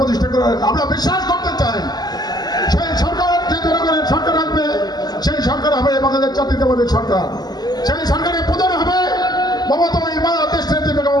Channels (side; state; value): right; late; 0.20 ms